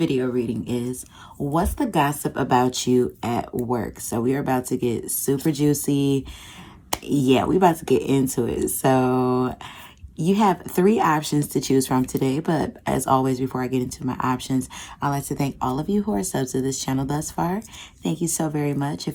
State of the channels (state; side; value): identical; both; correlation 1.00